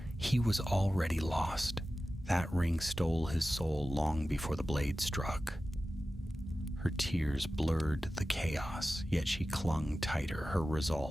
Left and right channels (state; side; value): normal; both; correlation 0.95